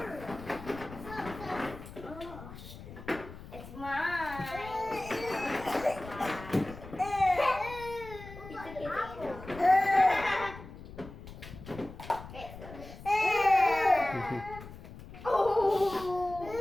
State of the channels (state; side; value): noise; left; rumble, 14 dB below the sound